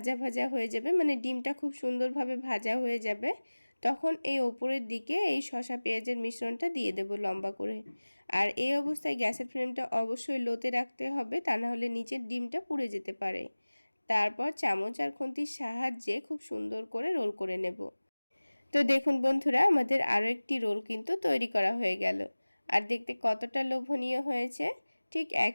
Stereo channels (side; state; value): both; inverted; correlation -1.00